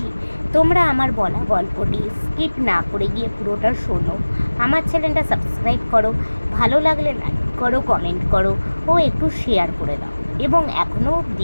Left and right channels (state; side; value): inverted; both; correlation -1.00